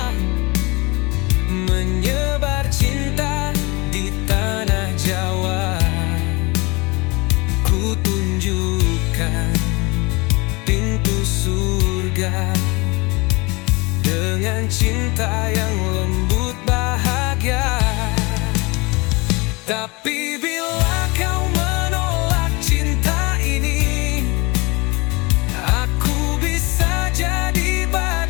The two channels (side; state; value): right; quieter; 26.0 dB